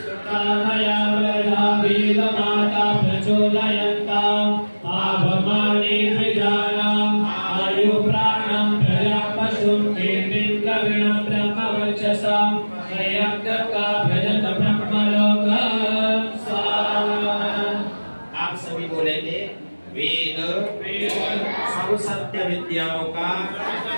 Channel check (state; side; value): inverted; both; correlation -1.00